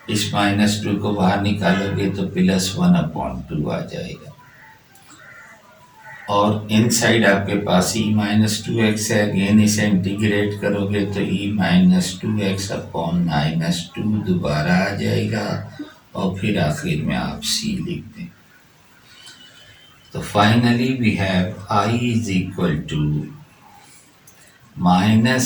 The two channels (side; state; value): both; identical; correlation 1.00